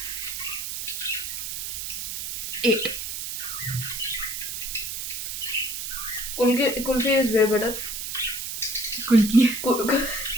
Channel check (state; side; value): noise; right; hiss, 5 dB below the sound